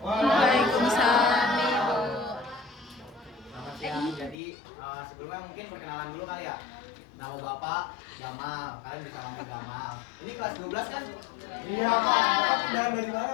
Waalaikumsalam, Ibu. Selamat siang. Jadi sebelumnya mungkin perkenalan dulu kali ya. Nama Bapak Gamal, kalian bisa panggil Gamal. Ini kelas 12 kan? Iya Pak. Dan dari mana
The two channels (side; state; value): right; drops out; at 4.4 s